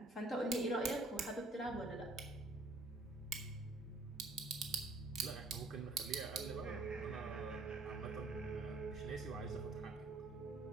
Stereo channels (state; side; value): quieter; left; 3.0 dB